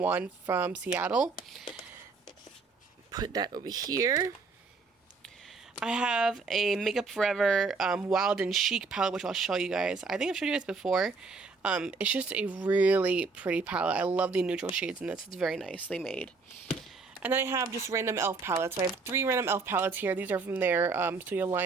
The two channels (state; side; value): quieter; left; 4.3 dB